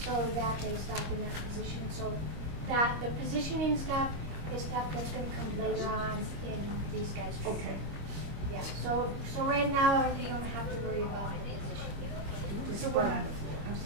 so that they stop in that position. So that the positioning stuff is stuff that's going to come later on in these guys' training. Okay. Yeah. So right now you don't have to worry about the position. So we're on the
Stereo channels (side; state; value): left; late; 25 ms